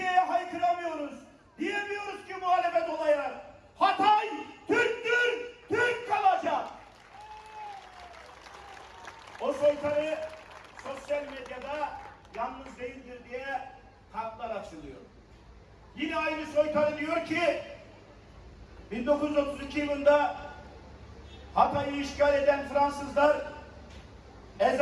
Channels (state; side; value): identical; both; correlation 1.00